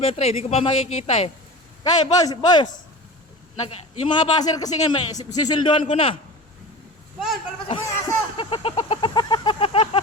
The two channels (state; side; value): normal; both; correlation 0.33